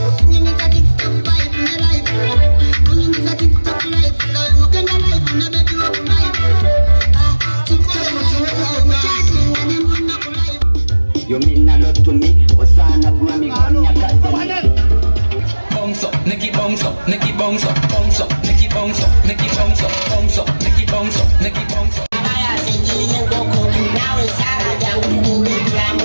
unyumiza TikTok vibe na live, unyumiza TikTok live, na ukenda live na beti wa live, TikTok mchati na nyimbo na live. You mean a lot to me, Osana Grammy Kanya Kazemi. Bounce up, Nikki bounce up, Nikki bounce up, bounce up, Nikki bounce up, Nikki bounce up, bounce up, Nikki bounce up, Nikki bounce up.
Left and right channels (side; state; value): both; inverted; correlation -1.00